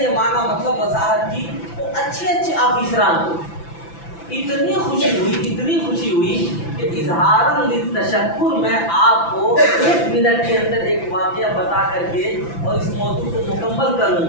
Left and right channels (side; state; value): right; late; 5.9 ms